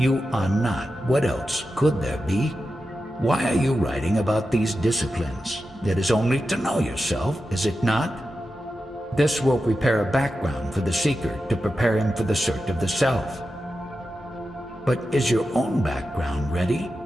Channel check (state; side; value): normal; both; correlation 0.91